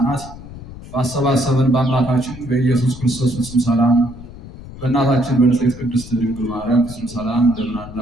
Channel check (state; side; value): noise; left; rumble, 15 dB below the sound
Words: ባሰባሰበን በአምላካችን በኢየሱስ ክርስቶስ ፍጹም ሰላም በእናታችን በንጽሕት ቅድስት ድንግል ማርያም ፍጹም ሰላም እንደምን